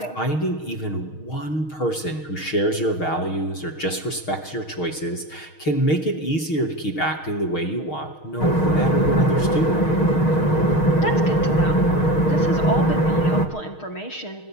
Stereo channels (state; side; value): late; right; 6.4 ms